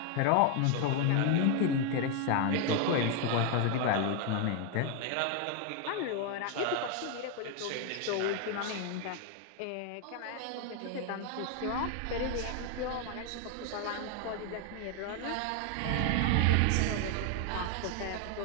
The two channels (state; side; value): different; both; correlation 0.00